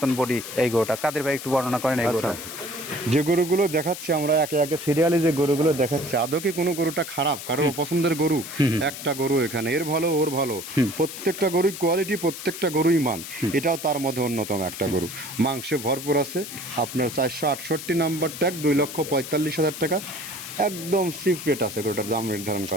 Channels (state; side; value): noise; left; hiss, 10 dB below the sound